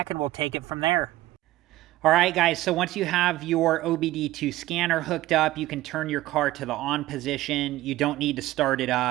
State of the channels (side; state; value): left; quieter; 16.3 dB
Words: and we'll take it from there. All right, guys, so once you have your OBD2 scanner hooked up, you can turn your car to the on position. You don't need to start it